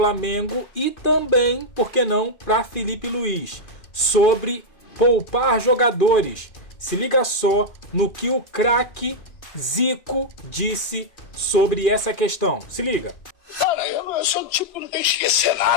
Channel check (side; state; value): right; late; 2.4 ms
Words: e também, por que não, para Felipe Luiz, sobre poupar jogadores. Se liga só no que o craque Zico disse sobre essa questão. Se liga. Cara, eu sou do tipo que não tem que esquecer